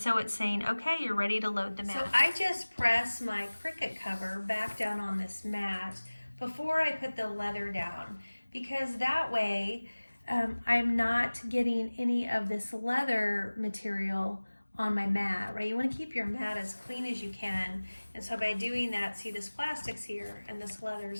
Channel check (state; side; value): inverted; both; correlation -1.00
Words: it's saying, okay, you're ready to load the mat. So I just press my Cricut cover back down on this mat before I put the leather down, because that way I'm not getting any of this leather material on my mat, right? You want to keep your mat as clean as you can. And so by doing that, see, this plastic's here and this leather